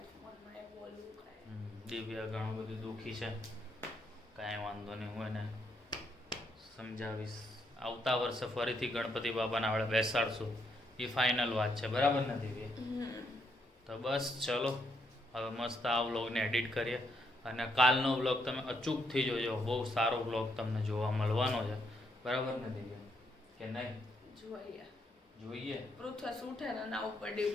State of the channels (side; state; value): both; normal; correlation 0.76